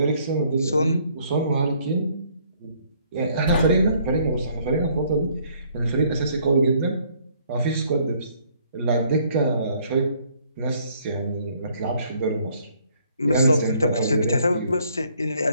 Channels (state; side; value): inverted; both; correlation -0.64